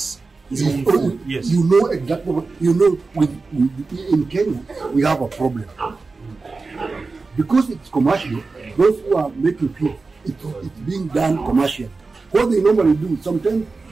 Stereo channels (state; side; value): quieter; left; 4.0 dB